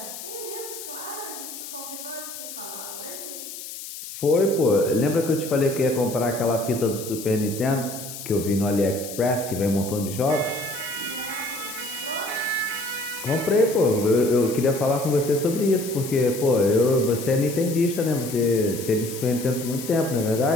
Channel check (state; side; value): noise; left; hiss, 11 dB below the sound